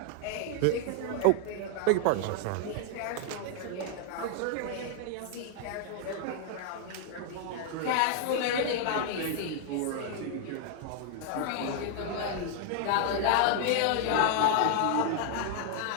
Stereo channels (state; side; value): different; both; correlation 0.00